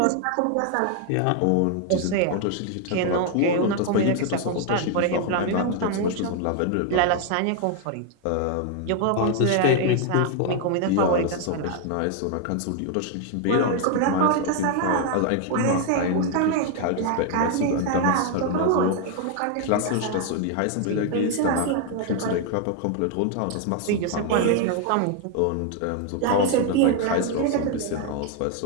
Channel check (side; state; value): both; different; correlation 0.00